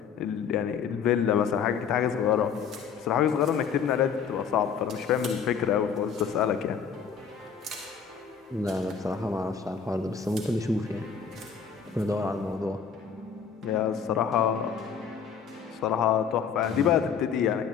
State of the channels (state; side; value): quieter; right; 6.8 dB